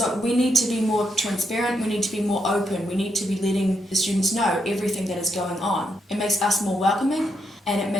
we need to be more transparent, we need to be more open, we need to be letting the students know everything that is going on. It makes us more welcoming, and it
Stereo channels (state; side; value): normal; both; correlation 0.80